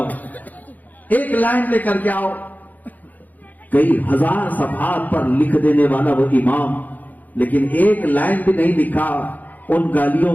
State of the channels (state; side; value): late; right; 0.082 ms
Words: ایک لائن لے کر کے آؤ. کئی 1000 صفحات پر لکھ دینے والا وہ امام، لیکن ایک لائن بھی نہیں لکھا ان گالیوں